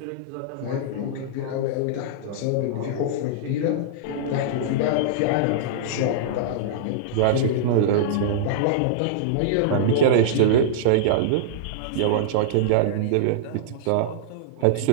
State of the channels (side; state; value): both; different; correlation -0.02